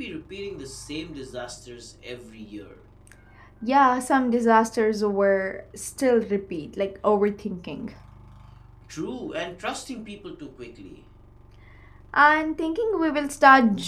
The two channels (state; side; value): identical; both; correlation 1.00